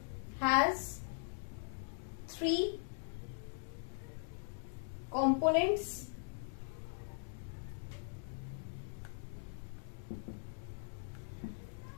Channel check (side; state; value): right; silent; digital silence